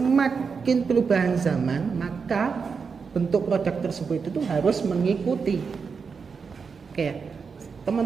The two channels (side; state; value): left; quieter; 5.5 dB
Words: perubahan zaman, maka bentuk produk tersebut itu harus mengikuti. Oke,